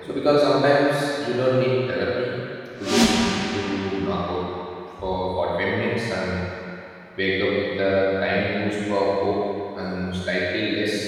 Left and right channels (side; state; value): both; identical; correlation 1.00